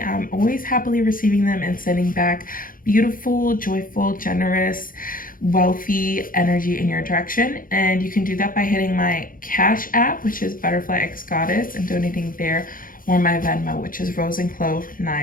I'm always happily receiving them and sending back beautiful, joyful, generous, wealthy energy in your direction. And you can do that by hitting my Cash app, which is Butterfly X Goddess, and donating there, or my Venmo, which is Rose and Clove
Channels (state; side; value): late; right; 0.40 ms